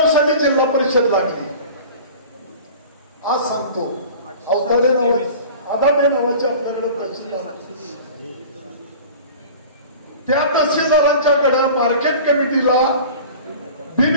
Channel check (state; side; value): inverted; both; correlation -0.40